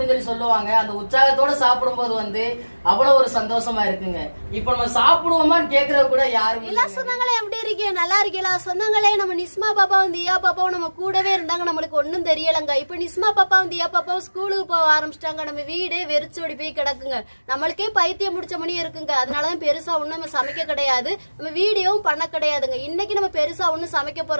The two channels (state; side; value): inverted; both; correlation -1.00